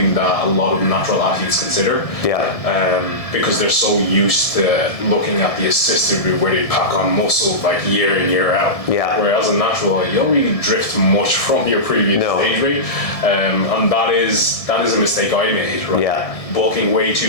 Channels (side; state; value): right; late; 1.6 ms